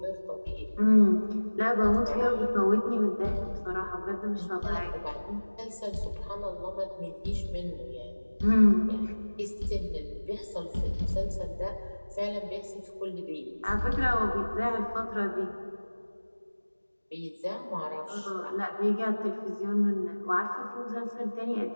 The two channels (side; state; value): both; inverted; correlation -1.00